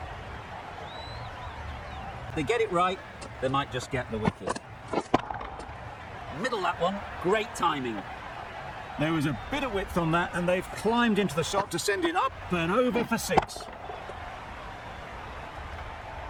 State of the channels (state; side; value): identical; both; correlation 1.00